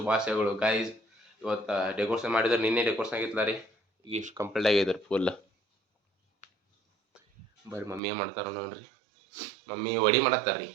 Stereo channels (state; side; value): drops out; left; at 8.0 s